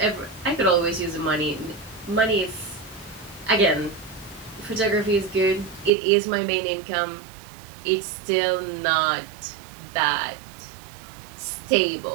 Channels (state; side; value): drops out; left; at 5.9 s